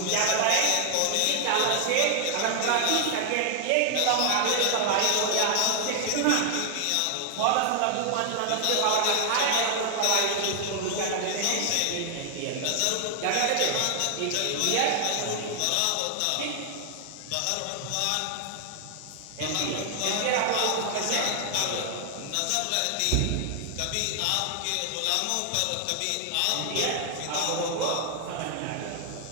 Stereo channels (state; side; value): different; both; correlation 0.00